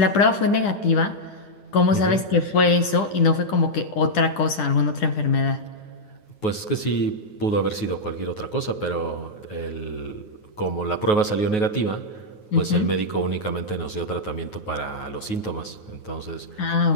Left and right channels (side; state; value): right; late; 9.4 ms